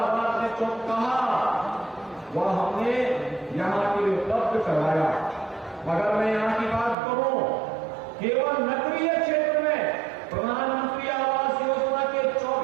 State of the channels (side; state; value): left; drops out; at 7.0 s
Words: ने जो कहा वह हमने यहां के लिए उपलब्ध करवाया। मगर मैं यहां की बात करूं, केवल नगरीय क्षेत्र में प्रधानमंत्री आवास योजना के